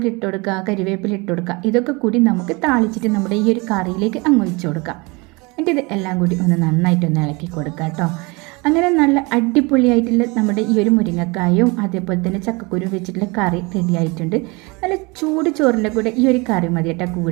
ഇട്ട് കൊടുക്കുക, കരിവേപ്പില ഇട്ട് കൊടുക്കുക. ഇതൊക്കെ കൂടി നമുക്ക് താളിച്ചിട്ട് നമ്മുടെ ഈ ഒരു കറിയിലേക്ക് അങ്ങ് ഒഴിച്ചു കൊടുക്കാം. എന്നിട്ട് ഇത് എല്ലാം കൂടി ഒന്ന് നന്നായിട്ടൊന്ന് ഇളക്കി കൊടുക്കുക കേട്ടോ. അങ്ങനെ നല്ല അടിപൊളിയായിട്ടുള്ള നമ്മുടെ ഈ ഒരു മുരിങ്ങക്കായും അതേപോലെ തന്നെ ചക്കക്കുരു വെച്ചിട്ടുള്ള കറി റെഡി ആയിട്ടുണ്ട്. നല്ല ചൂട് ചോറിൻ്റെ കൂടെ ഈ ഒരു കറി മതി കേട്ടോ.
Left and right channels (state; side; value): quieter; left; 26.8 dB